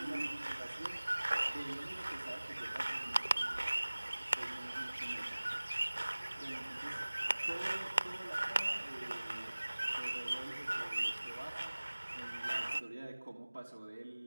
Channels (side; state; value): both; inverted; correlation -1.00